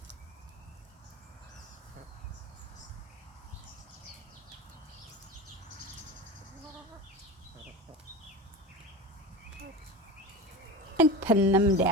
And pin them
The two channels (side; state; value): both; normal; correlation 0.27